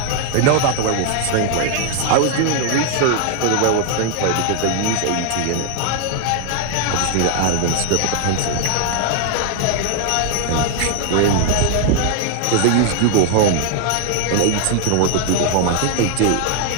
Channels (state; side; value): different; both; correlation 0.00